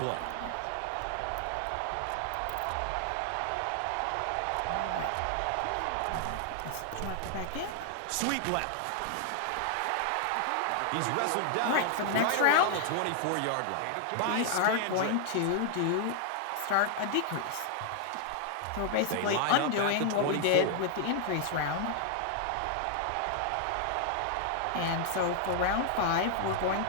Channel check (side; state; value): both; different; correlation 0.00